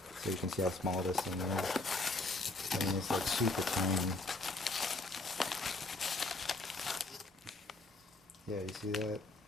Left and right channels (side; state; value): right; quieter; 3.0 dB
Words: so you can see how small this thing is. I mean, it's like super tiny. Yeah, you see that?